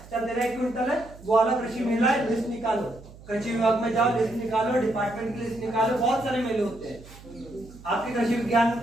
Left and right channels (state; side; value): noise; right; hum, 20 dB below the sound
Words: चल तेरा 1 क्विंटल है, वो वाला कृषि मेला है, लिस्ट निकालो, कृषि विभाग में जाओ, लिस्ट निकालो, डिपार्टमेंट की लिस्ट निकालो। बहुत सारे मेले होते हैं, आपके कृषि विज्ञान